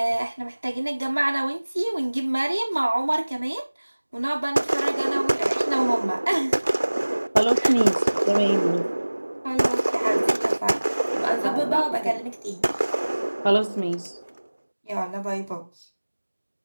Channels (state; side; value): inverted; both; correlation -1.00